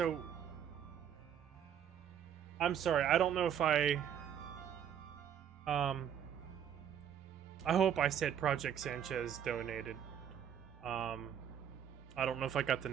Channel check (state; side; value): quieter; left; 9.0 dB